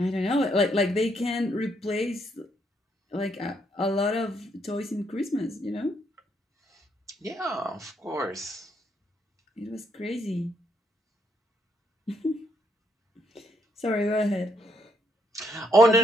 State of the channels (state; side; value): normal; both; correlation 0.73